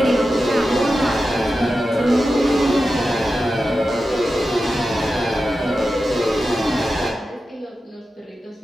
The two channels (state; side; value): normal; both; correlation 0.92